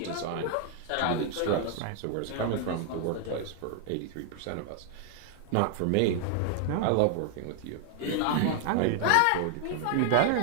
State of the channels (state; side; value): different; both; correlation 0.00